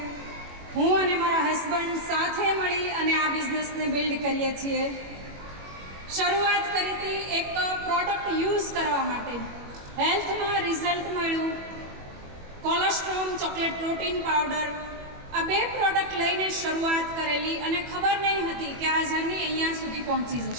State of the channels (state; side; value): late; left; 21 ms